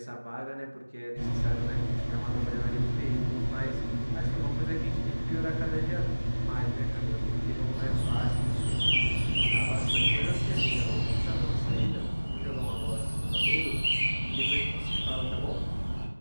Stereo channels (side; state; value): both; inverted; correlation -1.00